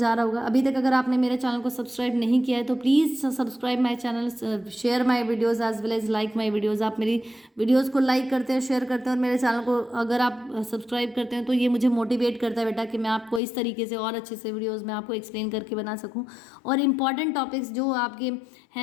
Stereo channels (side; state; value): right; drops out; at 13.4 s